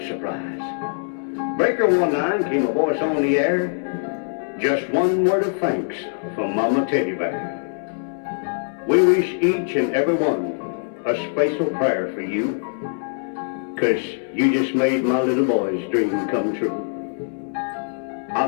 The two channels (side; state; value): right; silent; 62 dB below the other